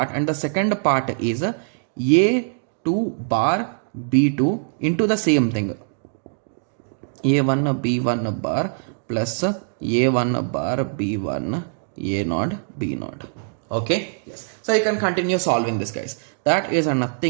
and the second part is a2 bar b2 into the same thing, a1 b1 bar plus a1 bar b1 a naught b naught. Okay, yes, so you can continue solving this, guys. That is a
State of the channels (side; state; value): left; silent; digital silence